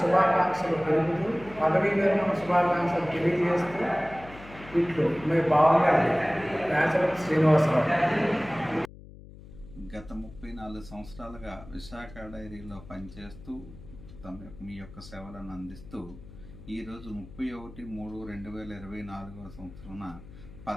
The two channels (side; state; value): left; noise; hum, 18 dB below the sound